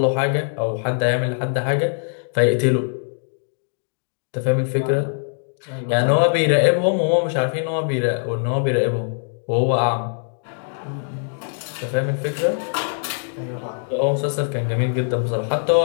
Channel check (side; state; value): right; silent; digital silence